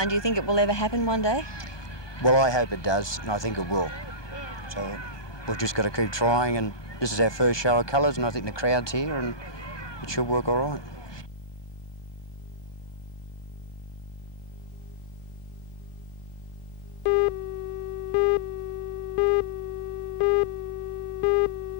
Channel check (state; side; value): late; right; 1.2 ms